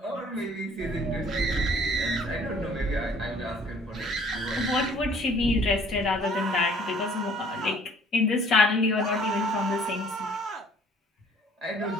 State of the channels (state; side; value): normal; both; correlation 0.55